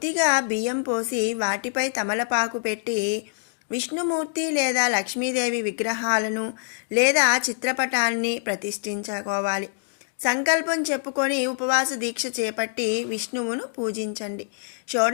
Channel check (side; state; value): right; silent; 62 dB below the other